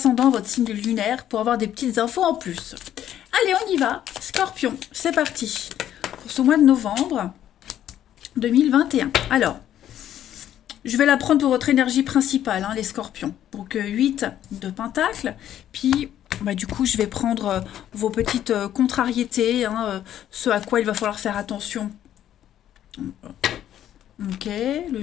votre signe lunaire, pour avoir des petites infos en plus. Allez, on y va. Scorpion, c'est parti. Pour ce mois de novembre 2021. Alors, je vais la prendre pour votre énergie principale, les scorpions. Donc, 8 de pentacles. Puis, du coup, je vais prendre vos petites contrariétés, ce à quoi il va falloir faire attention. Ok, le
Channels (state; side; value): quieter; right; 11.2 dB